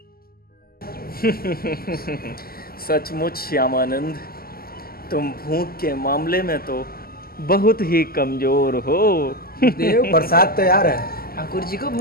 सचमुच श्यामानंद, तुम भूख के मामले में तो बहुत ही कमजोर हो। देव प्रसाद तैयार है। ठाकुर जी को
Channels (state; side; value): late; right; 0.43 ms